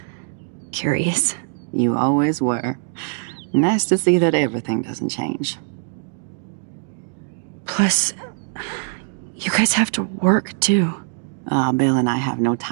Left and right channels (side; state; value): left; silent; digital silence